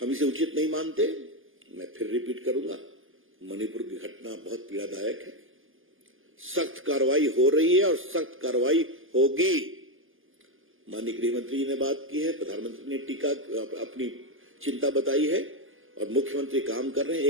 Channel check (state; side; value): late; left; 0.59 ms